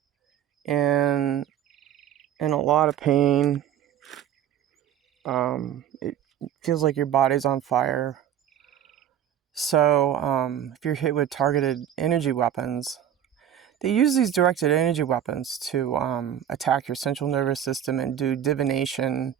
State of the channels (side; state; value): left; quieter; 10.1 dB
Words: and in a lot of pain. It feels like your body's on fire. So, if you're hit with targeted energy weapons, they use these directed energy weapons to attack your central nervous system and do divination